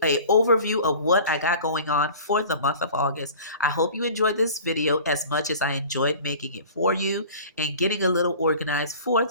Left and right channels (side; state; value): both; inverted; correlation -0.42